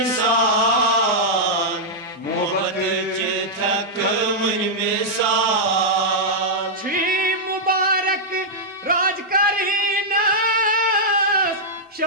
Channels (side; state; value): both; normal; correlation -0.07